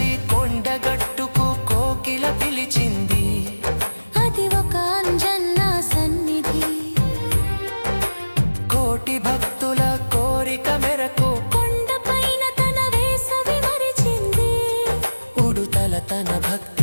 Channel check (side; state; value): both; inverted; correlation -1.00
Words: కొండగట్టుకు కోకిల పిలిచింది, అది ఒక అంజన్న సన్నిధి. కోటి భక్తుల కోరిక మెరకు కొండపైన తన వేసవి మరిచింది, ఉడుతల తన